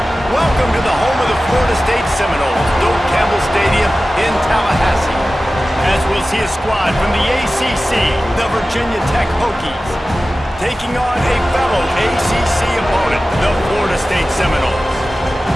Welcome to the home of the Florida State Seminoles, Doak Campbell Stadium in Tallahassee. As we'll see a squad from the ACC, the Virginia Tech Hokies, taking on a fellow ACC opponent, the Florida State Seminoles.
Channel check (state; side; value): normal; both; correlation 0.95